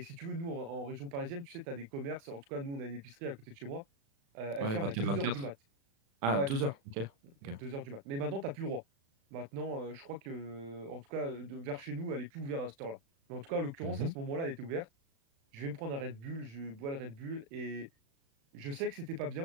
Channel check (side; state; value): left; late; 36 ms